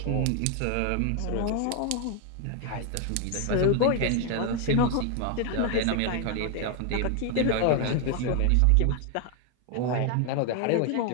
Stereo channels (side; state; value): both; different; correlation 0.01